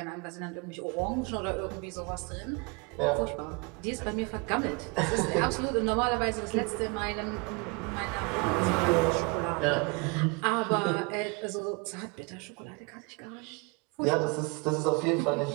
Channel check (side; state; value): left; quieter; 29.7 dB